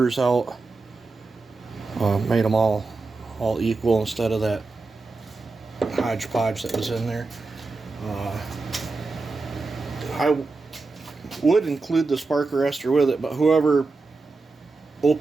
out, made them all equal instead of that hodgepodge that was in there. I would include the spark arrestor with it, but whoever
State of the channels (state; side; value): quieter; left; 3.8 dB